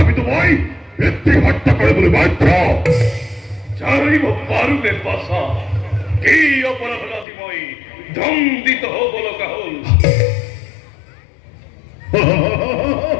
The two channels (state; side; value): drops out; right; at 7.2 s